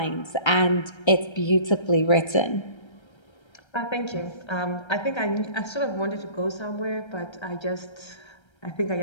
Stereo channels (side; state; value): right; late; 1.3 ms